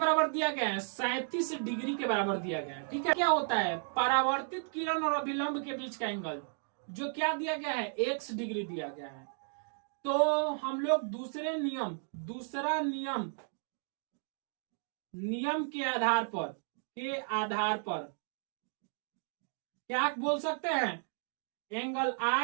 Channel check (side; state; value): left; silent; 55 dB below the other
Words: दिया गया है, 37 डिग्री के बराबर दिया गया है, ठीक है। क्या होता है, परावर्तित किरण और अभिलंब के बीच का एंगल जो क्या दिया गया है, x डिग्री दिया गया है। तो हम लोग दूसरा नियम के आधार पर क्या बोल सकते हैं, angle